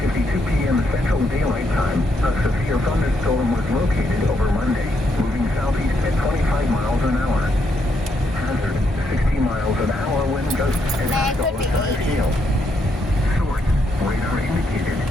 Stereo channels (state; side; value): normal; both; correlation 0.77